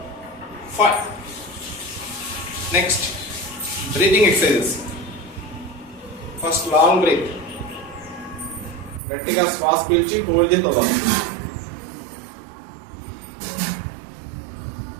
5. Next breathing exercises. First long breath, గట్టిగా శ్వాస పీల్చి హోల్డ్ చేసి వదలాలి.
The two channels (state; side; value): drops out; left; at 9.0 s